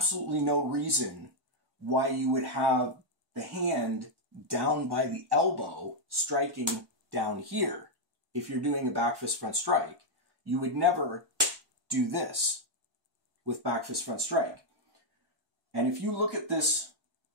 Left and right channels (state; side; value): late; left; 1.4 ms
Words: no reason why you would have the hand down by the elbow striking down here. If you're doing a back fist front strike, you would never do this with back fist front strike. And if you look at this